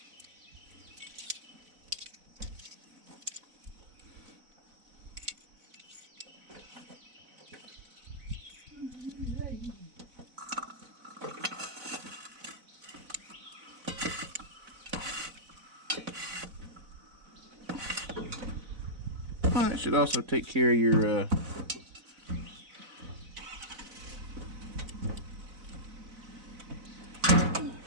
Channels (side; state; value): left; late; 4.0 ms